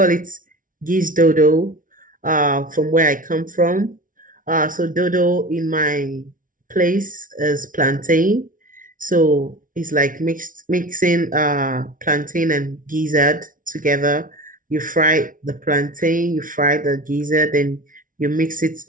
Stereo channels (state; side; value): late; left; 0.39 ms